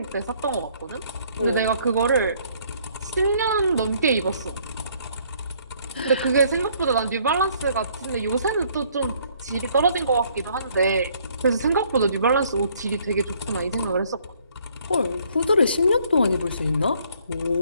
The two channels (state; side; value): inverted; both; correlation -0.63